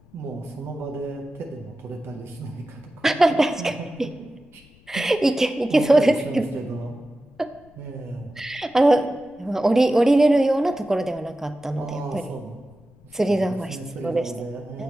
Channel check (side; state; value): left; noise; rumble, 28 dB below the sound